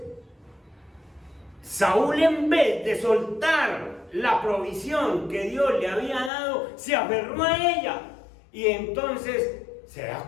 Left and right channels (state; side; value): drops out; right; at 6.3 s